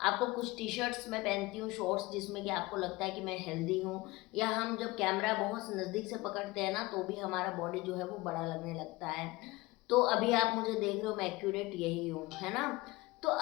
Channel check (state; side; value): quieter; right; 21.0 dB